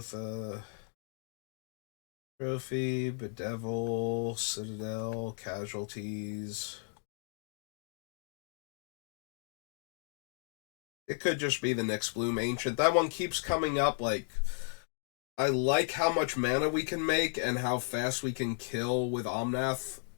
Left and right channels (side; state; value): right; silent; 55 dB below the other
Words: Trophy, Bedevil, Citadel, Casualties. It could just be the Nyx Bloom Ancient. That one keeps coming up. Like, I like how much mana we can make and how fast we can kill with Omnath